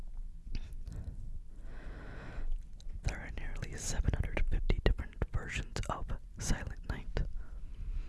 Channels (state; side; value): identical; both; correlation 1.00